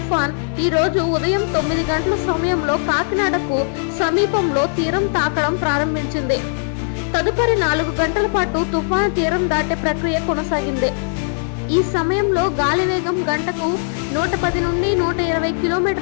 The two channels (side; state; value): right; silent; 66 dB below the other